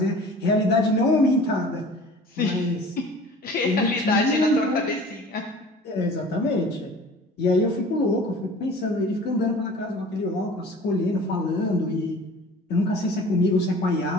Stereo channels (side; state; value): both; normal; correlation 0.44